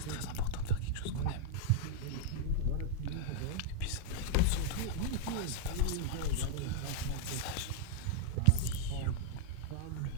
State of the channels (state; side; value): different; both; correlation -0.01